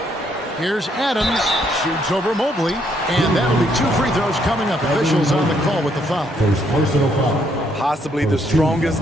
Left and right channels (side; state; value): both; normal; correlation 0.71